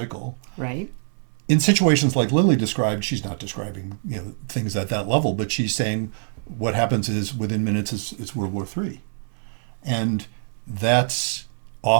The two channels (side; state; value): left; silent; 63 dB below the other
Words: Right. In situations like Lily described, she's not describing, things at that level, but she's saying what happens is within minutes it's World War III. And that's